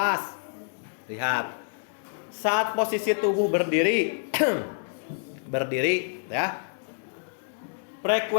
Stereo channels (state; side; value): silent; right; 58 dB below the other